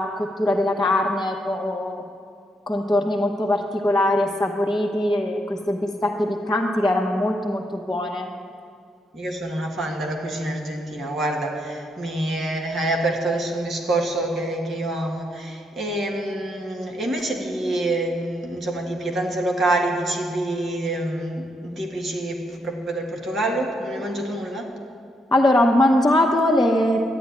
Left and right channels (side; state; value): both; normal; correlation 0.78